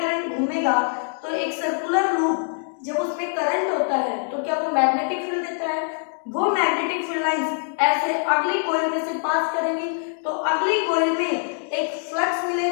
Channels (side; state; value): right; silent; 58 dB below the other